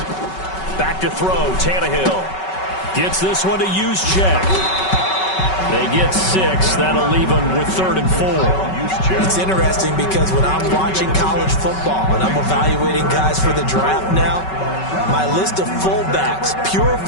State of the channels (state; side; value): late; right; 5.3 ms